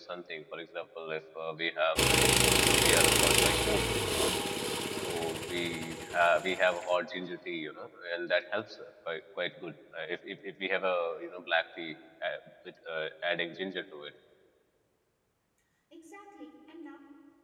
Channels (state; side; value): identical; both; correlation 1.00